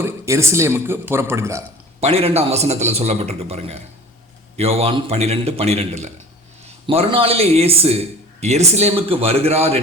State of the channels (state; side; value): normal; both; correlation 0.41